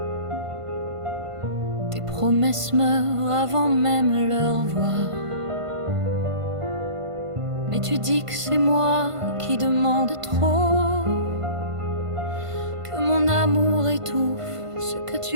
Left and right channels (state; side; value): late; left; 1.5 ms